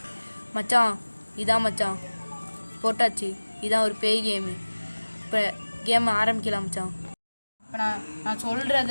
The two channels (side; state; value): both; inverted; correlation -1.00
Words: மச்சான், இதான் மச்சான் போட்டாச்சு. இதான் ஒரு பேய் கேமு. இப்போ கேம் ஆரம்பிக்கலாம் மச்சான். இப்போ நான்